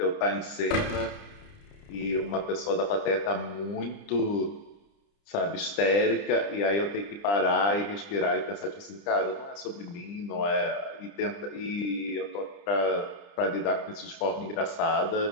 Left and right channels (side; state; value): right; late; 30 ms